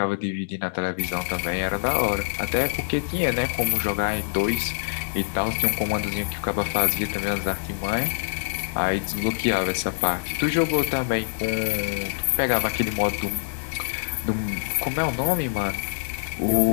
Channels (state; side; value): silent; right; digital silence